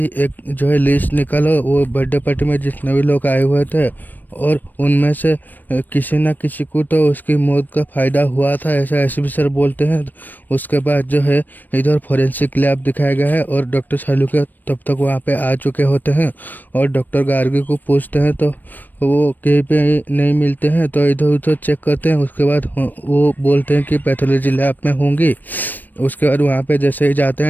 एक जो है लिस्ट निकालो वो बर्थडे पार्टी में जितने भी लोग आए हुए थे और उनमें से किसी ना किसी को तो उसकी मौत का फ़ायदा हुआ था, ऐसा एसीपी सर बोलते हैं। उसके बाद जो है इधर फॉरेंसिक लैब दिखाया गया है और डॉक्टर सालू के तब तक वहाँ पे आ चुके होते हैं और डॉक्टर गार्गी को पूछते हैं तो वो कहीं पे नहीं मिलते हैं, तो इधर उधर चेक करते हैं। उसके बाद वो बोलते हैं कि पैथोलॉजी लैब में होंगी। उसके बाद वहाँ पे जैसे ही जाते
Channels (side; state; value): right; late; 0.089 ms